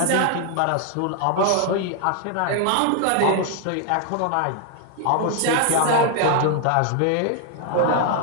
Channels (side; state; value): both; different; correlation 0.00